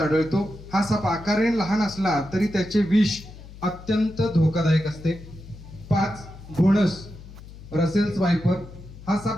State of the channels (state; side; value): noise; left; hum, 17 dB below the sound